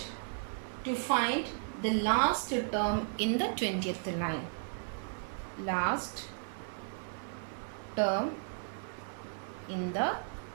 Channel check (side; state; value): left; silent; digital silence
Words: to find the last term in the 20th line. Last term in the